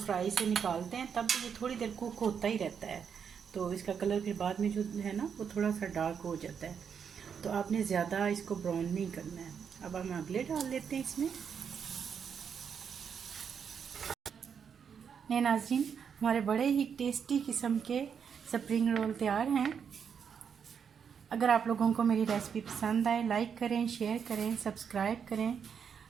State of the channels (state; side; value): quieter; left; 7.1 dB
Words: से निकालते हैं तब ये थोड़ी देर कुक होता ही रहता है, तो इसका कलर फिर बाद में जो है ना वो थोड़ा सा डार्क हो जाता है। तो आपने ज़्यादा इसको ब्राउन नहीं करना है। अब हम अगले डाल लेते हैं इसमें। ये नाज़रीन, हमारे बड़े ही टेस्टी किस्म के स्प्रिंग रोल तैयार हैं। अगर आप लोगों को मेरी रेसिपी पसंद आए, लाइक करें, शेयर करें, सब्सक्राइब करें।